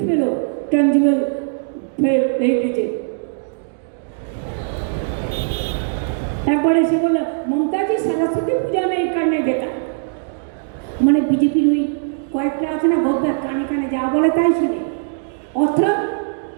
পেল, ট্যাঞ্জিবল হেরিটেজে। একবার এসে বলল মমতাজি সরস্বতী পূজা নেই কারণে যেটা, মানে বিজেপির ওই কয়েকটা আছে না গদ্দার, কানে কানে যা বলে তাই শোনে। অর্থাৎ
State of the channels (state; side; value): silent; left; digital silence